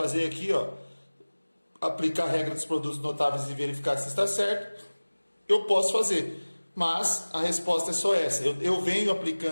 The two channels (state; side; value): inverted; both; correlation -1.00